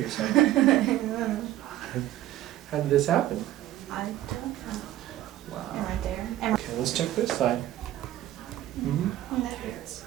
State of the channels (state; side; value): quieter; left; 13.8 dB